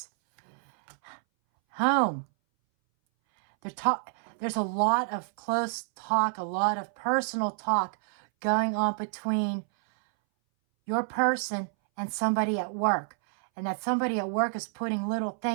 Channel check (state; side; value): silent; left; 59 dB below the other